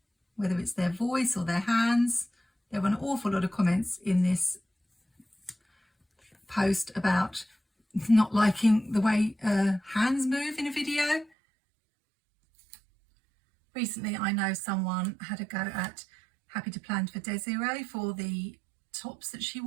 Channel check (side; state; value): left; drops out; at 11.3 s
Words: whether it's their voice or their hands. There were an awful lot of comments in this post about not liking the way hands move in a video. Recently, I know someone had a go at Happy to Plan for Desiree for the tops that she